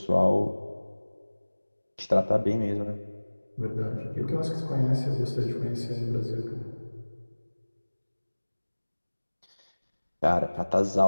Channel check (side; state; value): both; inverted; correlation -1.00